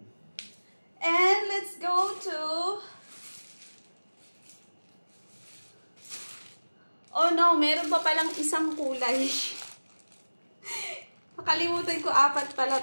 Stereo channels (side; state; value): both; inverted; correlation -1.00